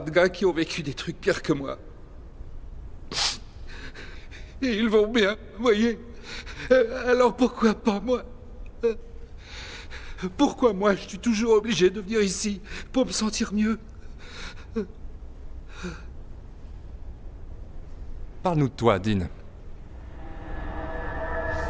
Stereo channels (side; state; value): both; identical; correlation 1.00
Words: de gars qui ont vécu des trucs pires que moi. Et ils vont bien, voyez. Alors pourquoi pas moi? Pourquoi moi, je suis toujours obligé de venir ici pour me sentir mieux? Parle-nous de toi, Dean.